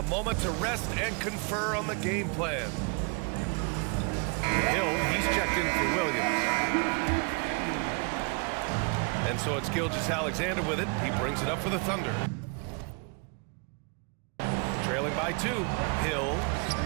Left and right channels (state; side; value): quieter; left; 33.8 dB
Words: moment to rest and confer on the game plan. Hill, he's checked in for Williams. And so it's Gilgeous-Alexander with it. He brings it up for the Thunder. Trailing by 2. Hill.